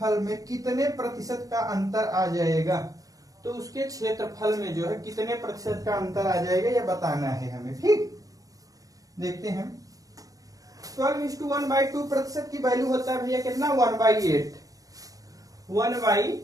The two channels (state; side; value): late; left; 0.17 ms